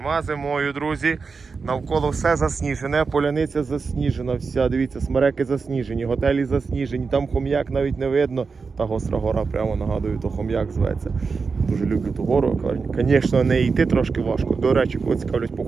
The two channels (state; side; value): quieter; left; 4.8 dB